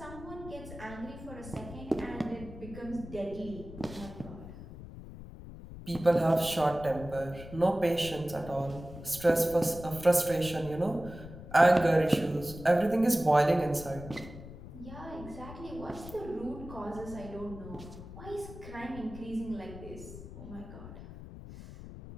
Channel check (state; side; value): noise; left; rumble, 13 dB below the sound